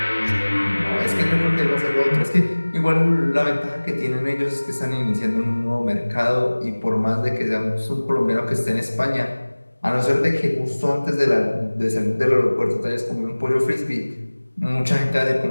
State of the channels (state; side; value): inverted; both; correlation -1.00